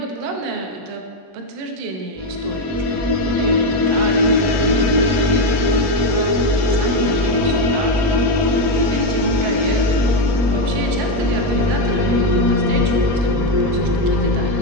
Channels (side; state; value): left; late; 21 ms